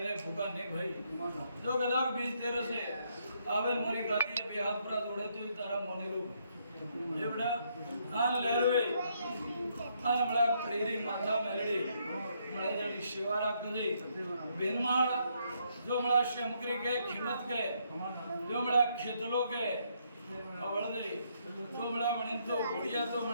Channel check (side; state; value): both; inverted; correlation -0.73